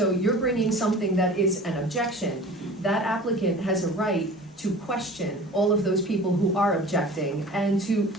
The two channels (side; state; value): both; normal; correlation 0.41